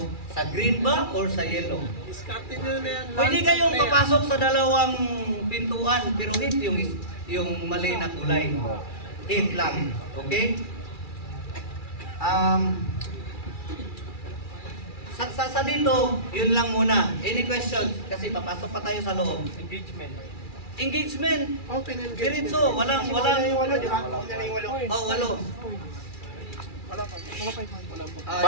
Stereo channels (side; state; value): right; late; 2.3 ms